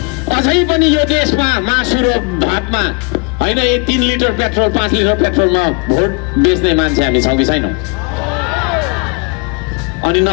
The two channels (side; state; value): right; quieter; 32.4 dB